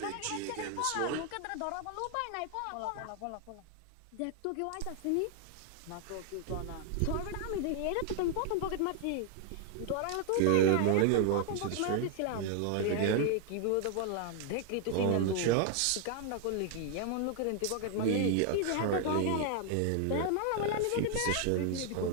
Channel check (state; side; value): different; both; correlation 0.00